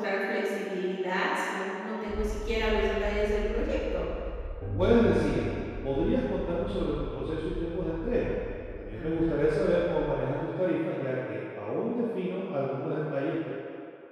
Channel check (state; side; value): identical; both; correlation 1.00